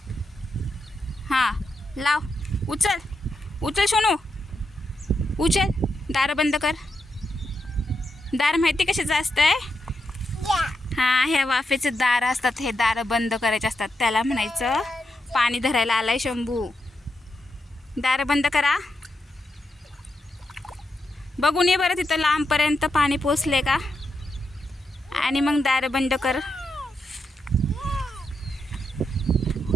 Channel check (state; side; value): normal; both; correlation 0.84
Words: हां लाव. उचल उचल सोनू, उचल. दार बंद कर. दार माहिती कशाचं असतंय? हां ह्या वाफेचे दार असतात, हे दार बंद करायचे असतात. त्याला म्हणायचं पाणी धरायला आलाय शंभू. दार बंद करा. बघून ये बरं तिथं लांबपर्यंत पाणी पोचले का, आणि मग दार बंद कर.